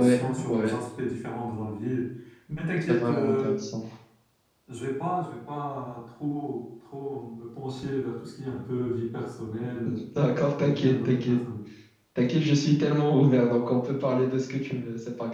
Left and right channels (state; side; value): identical; both; correlation 1.00